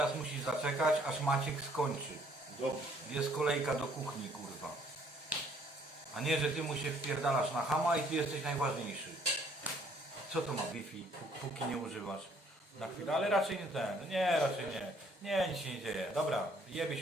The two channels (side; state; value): both; normal; correlation 0.63